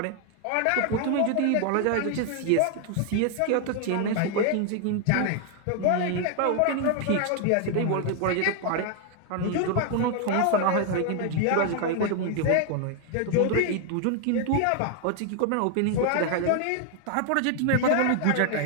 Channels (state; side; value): different; both; correlation 0.00